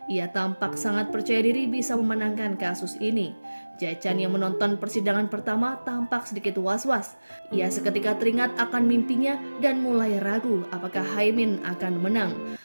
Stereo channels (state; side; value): inverted; both; correlation -1.00